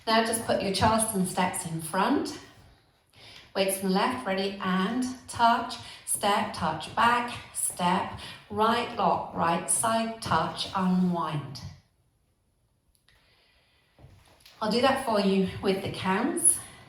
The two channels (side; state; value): both; identical; correlation 1.00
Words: Now just put your Charleston steps in front. Weights in the left, ready, and touch, step, touch, back, step, right, lock, right, side, touch, unwind. I'll do that for you with the counts.